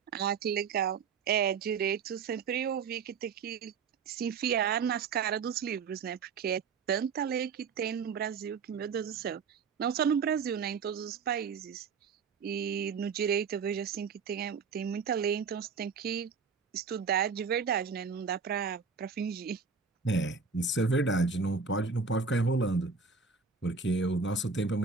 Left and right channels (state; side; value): quieter; left; 5.5 dB